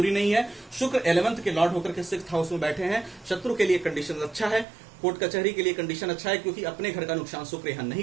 नहीं है। शुक्र 11th के लॉर्ड होकर के 6th हाउस में बैठे हैं। शत्रु के लिए कंडीशन अच्छा है, कोर्ट कचहरी के लिए कंडीशन अच्छा है, क्योंकि अपने घर का नुकसान शुक्र यहां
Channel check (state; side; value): drops out; left; at 4.7 s